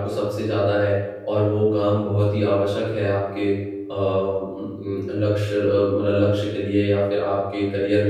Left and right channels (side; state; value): both; identical; correlation 1.00